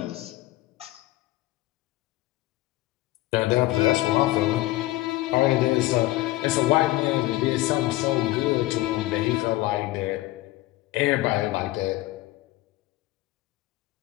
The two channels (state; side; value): quieter; right; 17.6 dB